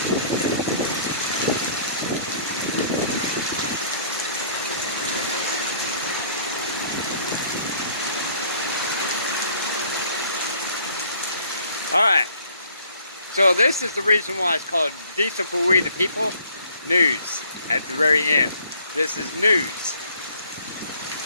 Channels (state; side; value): inverted; both; correlation -0.58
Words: All right, so this is the reason why it's called Diesel for We the People News at the very end. This is news.